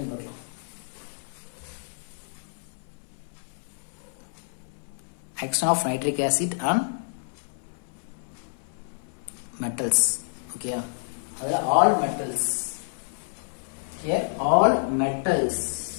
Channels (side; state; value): right; silent; 59 dB below the other